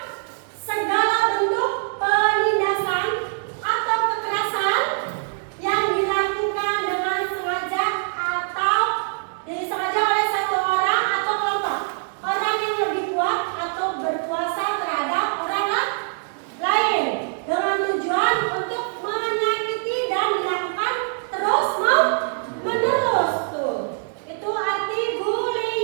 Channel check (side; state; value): left; silent; 63 dB below the other